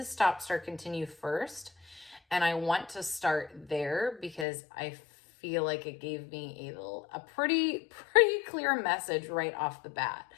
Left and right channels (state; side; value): drops out; right; at 4.5 s